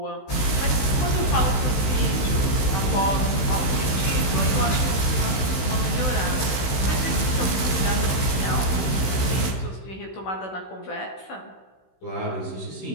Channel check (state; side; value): late; right; 15 ms